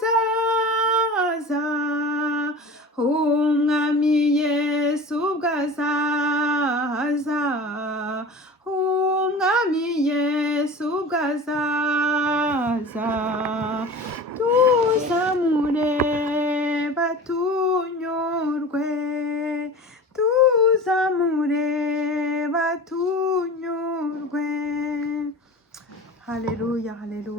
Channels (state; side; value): normal; both; correlation 0.36